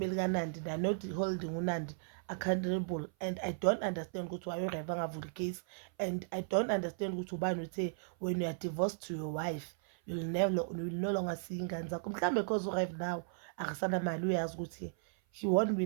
kaNandi they are not holding uNandi accountable. And I don't understand ukuthi why uRev angavula icase, and I don't understand ukuthi ubani uthe when you are divorced to your wife you will no longer see ingane zakho. Mhlambe because uRev now akasana mali, uyazi ukuthi he won't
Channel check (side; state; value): left; silent; 54 dB below the other